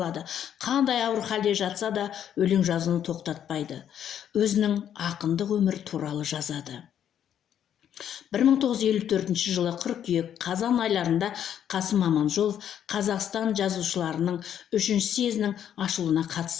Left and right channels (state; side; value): quieter; right; 9.7 dB